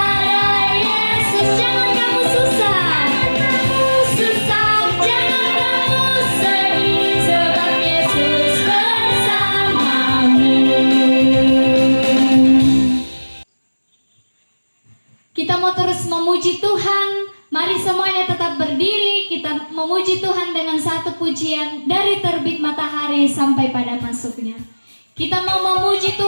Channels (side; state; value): both; inverted; correlation -1.00